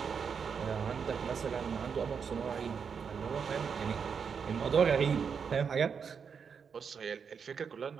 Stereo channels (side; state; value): left; quieter; 6.4 dB